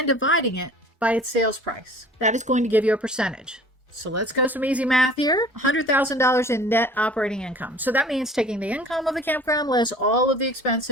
dividing it by its sales price. That is going to give you a percentage. So let's go some easy math here. $100,000 in net operating income. So that means taking the income of the campground less all of the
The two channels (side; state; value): both; normal; correlation 0.47